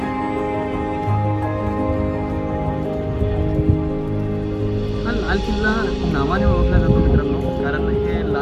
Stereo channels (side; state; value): both; identical; correlation 1.00